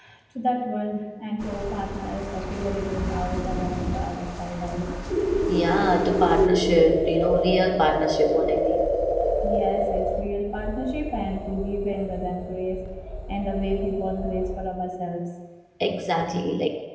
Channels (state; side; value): identical; both; correlation 1.00